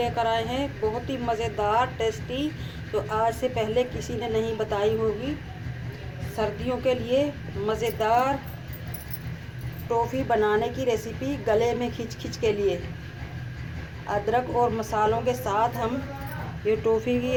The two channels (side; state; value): both; identical; correlation 1.00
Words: आए हैं बहुत ही मज़ेदार, टेस्टी, जो आज से पहले किसी ने नहीं बताई होगी। सर्दियों के लिए मज़ेदार टॉफ़ी बनाने की रेसिपी, गले में खिच के लिए अदरक और मसालों के साथ हम ये टॉफ़ी की